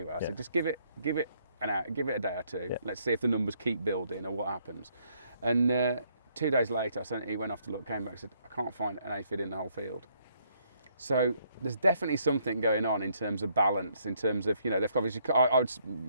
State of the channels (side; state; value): both; inverted; correlation -0.70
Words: I said, just give it an hour, give it a day or two. Yeah. Let's see if the numbers keep building or what happens. And 2 days later, he went off to look, came back and said, I can't find an aphid in the whole field. So there's definitely something going on in terms of balance, in terms of, you know, they've obviously, I would,